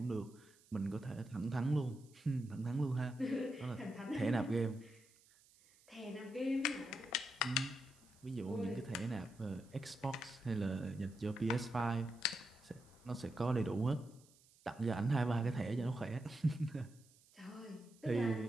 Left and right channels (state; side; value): noise; right; hiss, 28 dB below the sound